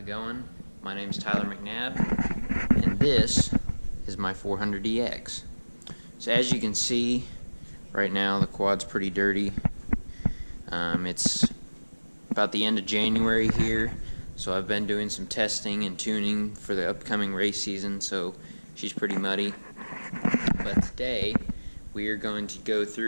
going? My name's Tyler McNabb, and this is my 400DX. So as you can see, right now the quad's pretty dirty. It's about the end of January here, so I've been doing some testing and tuning for the upcoming race season, so she's pretty muddy. But today, we are going to go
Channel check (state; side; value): inverted; both; correlation -1.00